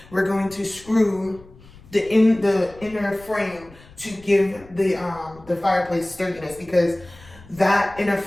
we're going to screw the inner frame to give the fireplace sturdiness, because that inner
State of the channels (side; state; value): left; noise; rumble, 23 dB below the sound